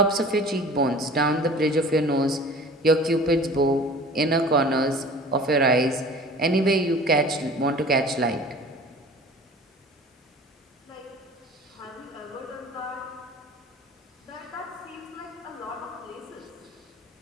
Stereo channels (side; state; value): both; normal; correlation 0.43